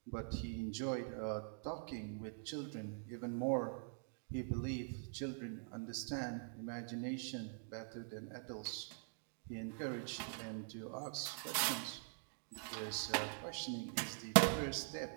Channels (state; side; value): silent; left; digital silence